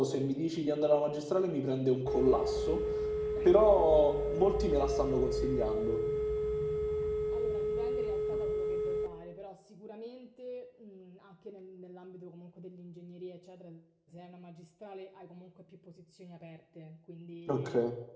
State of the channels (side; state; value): both; identical; correlation 1.00